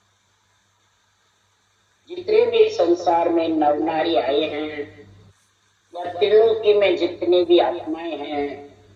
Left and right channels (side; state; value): both; identical; correlation 1.00